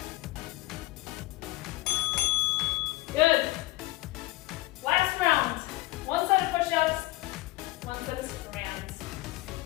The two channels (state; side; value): quieter; right; 19.7 dB